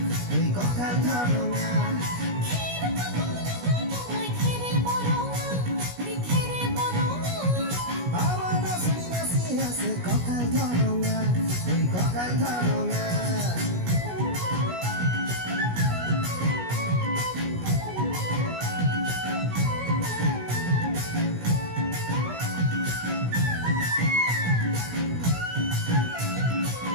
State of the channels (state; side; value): late; left; 17 ms